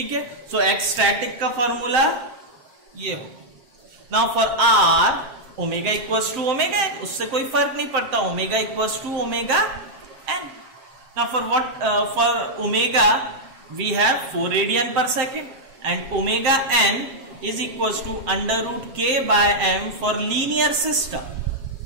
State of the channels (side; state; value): left; late; 7.6 ms